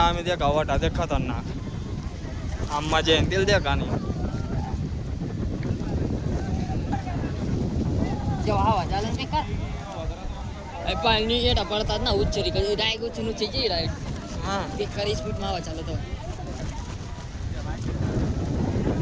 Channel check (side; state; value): both; identical; correlation 1.00